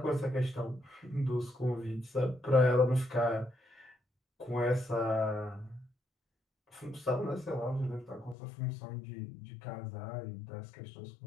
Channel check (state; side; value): drops out; right; at 8.3 s